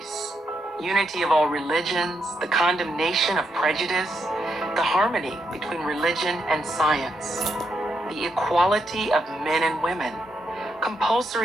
unity of all religions, the condemnation of prejudice, the harmony between religion and science, the equality of men and women,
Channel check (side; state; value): both; normal; correlation 0.81